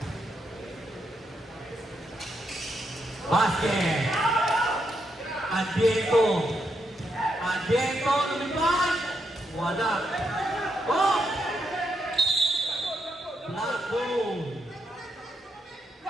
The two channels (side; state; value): both; normal; correlation 0.81